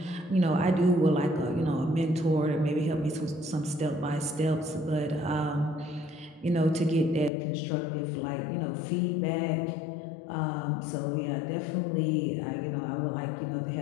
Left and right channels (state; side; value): drops out; right; at 7.3 s